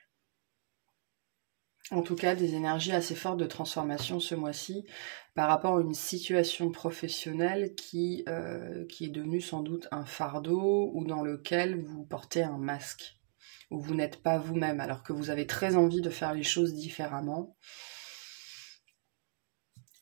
En tout cas, des énergies assez fortes de transformation ce mois-ci par rapport à une situation professionnelle qui est devenue sans doute un fardeau ou dans lequel vous portez un masque, où vous n'êtes pas vous-même alors que vous avez très envie de faire les choses différemment.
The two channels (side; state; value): left; silent; digital silence